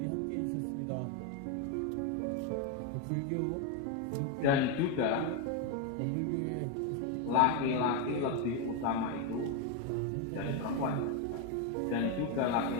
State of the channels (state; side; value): different; both; correlation 0.02